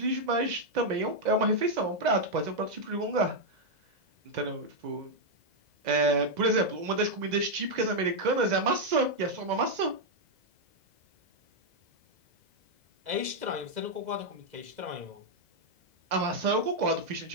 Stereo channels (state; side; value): late; left; 2.0 ms